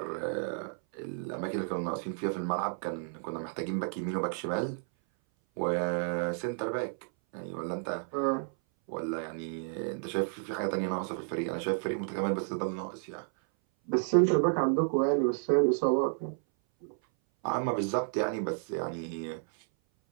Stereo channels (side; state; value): left; silent; 57 dB below the other